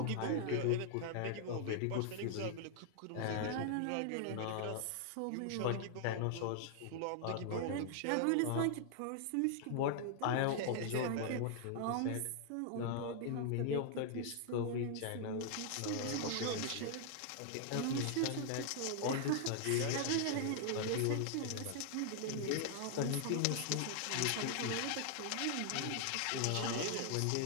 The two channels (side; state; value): both; different; correlation -0.01